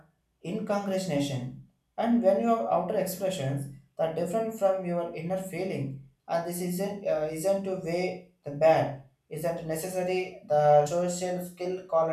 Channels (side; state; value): both; identical; correlation 1.00